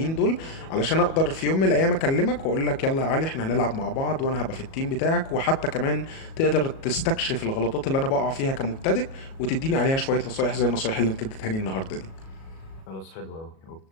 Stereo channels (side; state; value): right; late; 37 ms